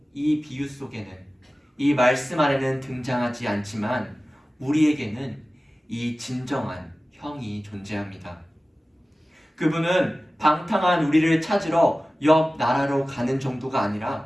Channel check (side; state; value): both; normal; correlation 0.96